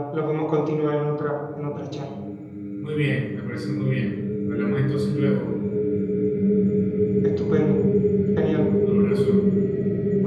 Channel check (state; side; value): identical; both; correlation 1.00